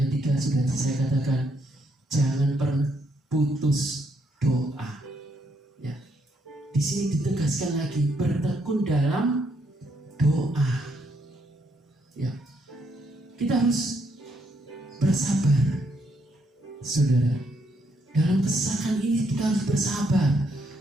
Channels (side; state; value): both; normal; correlation 0.74